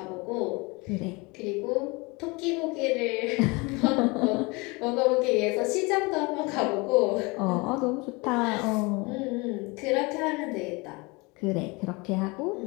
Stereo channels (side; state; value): right; quieter; 26.5 dB